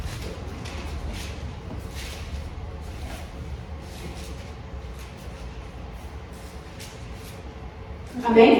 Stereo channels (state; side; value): identical; both; correlation 1.00